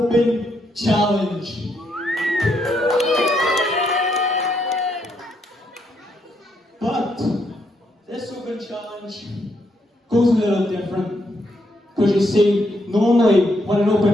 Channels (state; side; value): normal; both; correlation 0.77